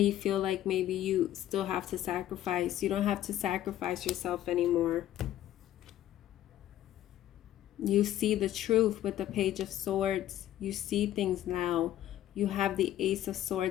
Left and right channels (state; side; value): quieter; right; 12.8 dB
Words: feel like maybe you still have to sacrifice. You don't have to sacrifice yourself anymore. You see the truth with the Page of Swords. You see things now. You have the Ace of